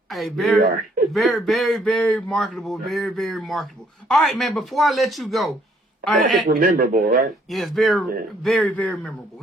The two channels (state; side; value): normal; both; correlation 0.66